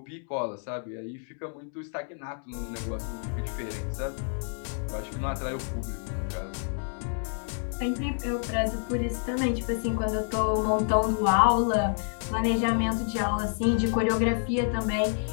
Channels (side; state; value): right; silent; 59 dB below the other